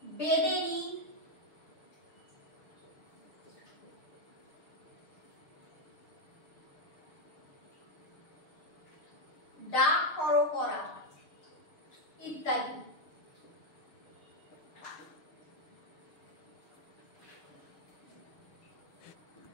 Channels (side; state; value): right; late; 6.6 ms